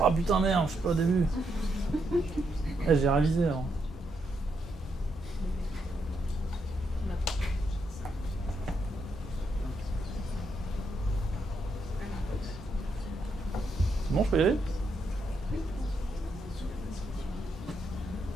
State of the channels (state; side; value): normal; both; correlation 0.79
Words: putain merde, je suis pas au début. J'ai révisé alors. C'est bon, je peux y aller?